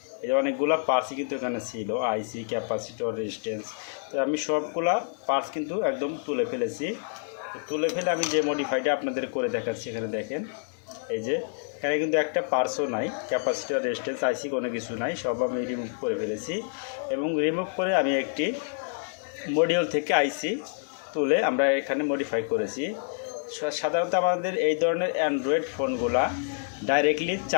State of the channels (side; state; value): right; silent; 60 dB below the other